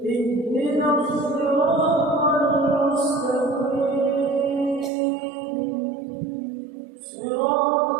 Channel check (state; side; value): drops out; left; at 4.9 s